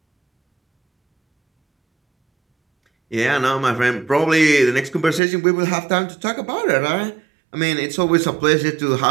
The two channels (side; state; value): left; drops out; at 5.2 s